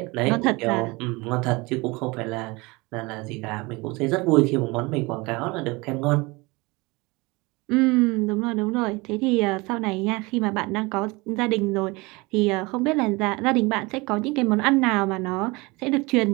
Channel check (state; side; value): quieter; left; 24.6 dB